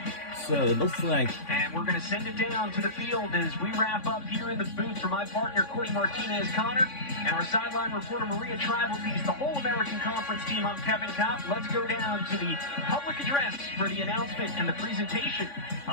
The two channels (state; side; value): late; right; 3.5 ms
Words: So it looks like. And we're going to send it down to the field as we wrap up here in the booth for my partner, Courtney Martinez-Connor, and our sideline reporter, Maria Tribaltees, the whole American Conference team. I'm Kevin Kopp. Let's go down to the public address for the announcement and the presentation